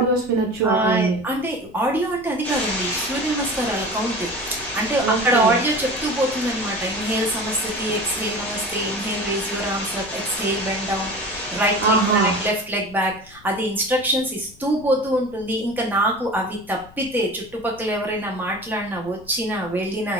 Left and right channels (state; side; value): noise; left; rumble, 23 dB below the sound